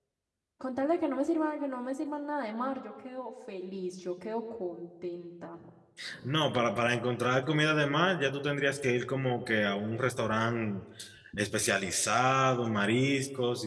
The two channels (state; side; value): identical; both; correlation 1.00